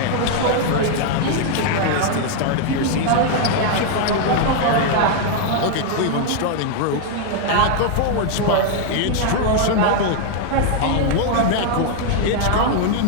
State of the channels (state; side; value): different; both; correlation 0.00